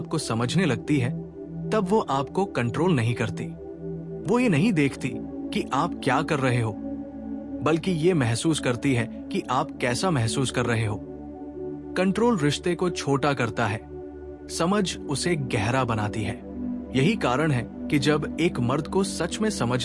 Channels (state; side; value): identical; both; correlation 1.00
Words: समझने लगती है तब वो आपको कंट्रोल नहीं करती। वो ये नहीं देखती कि आप क्या कर रहे हो, बल्कि ये महसूस करती है कि आप कैसा महसूस कर रहे हो। कंट्रोल रिश्ते को छोटा करता है, समझ उसे गहरा बनाती है। यही कारण है कि जब एक मर्द को सच में